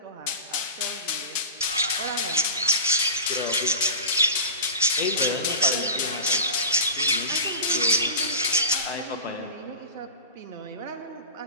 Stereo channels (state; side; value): inverted; both; correlation -0.31